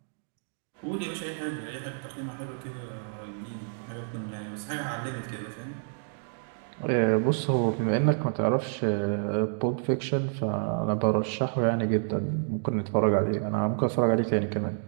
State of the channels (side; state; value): left; silent; digital silence